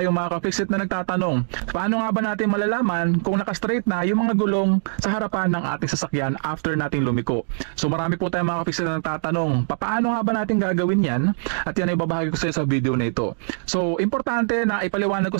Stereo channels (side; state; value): left; silent; digital silence